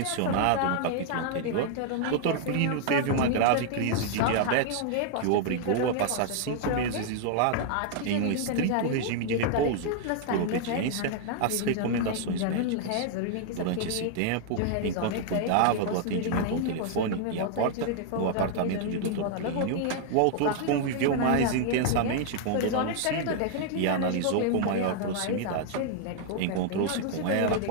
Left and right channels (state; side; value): different; both; correlation 0.00